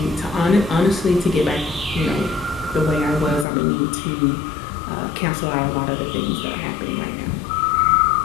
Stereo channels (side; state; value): right; drops out; at 3.5 s